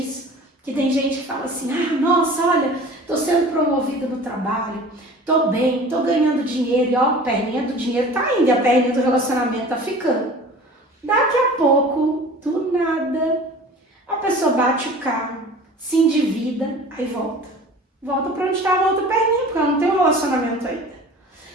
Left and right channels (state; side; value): normal; both; correlation 0.42